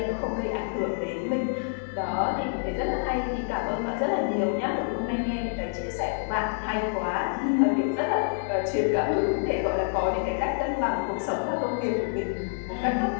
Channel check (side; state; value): right; silent; 60 dB below the other